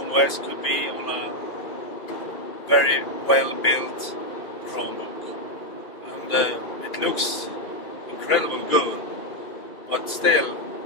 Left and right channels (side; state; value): right; late; 2.5 ms